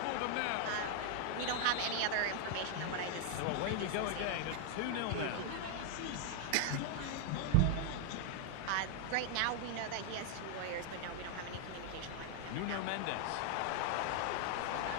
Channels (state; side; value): different; both; correlation 0.00